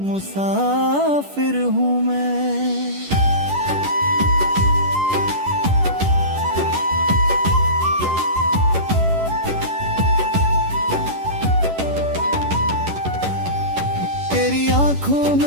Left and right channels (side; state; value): left; late; 11 ms